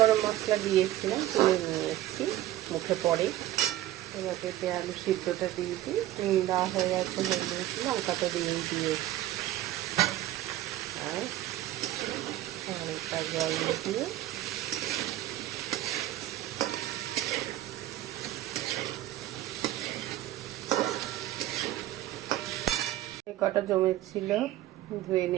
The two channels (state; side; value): quieter; left; 14.3 dB